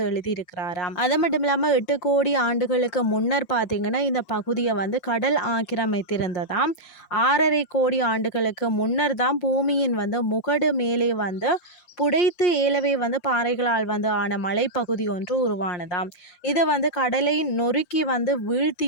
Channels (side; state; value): right; late; 5.6 ms